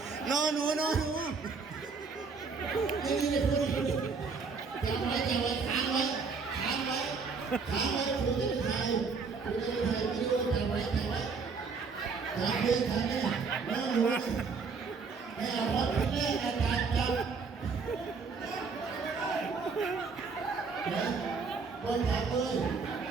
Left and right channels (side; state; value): left; quieter; 5.0 dB